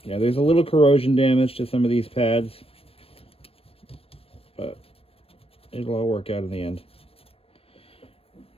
yeah, there's a little corrosion damage to some of these pads, but it'll all work out in the end.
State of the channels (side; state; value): right; late; 0.28 ms